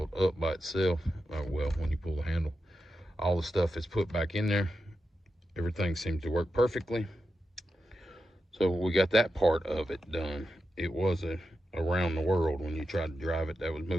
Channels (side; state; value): both; normal; correlation 0.89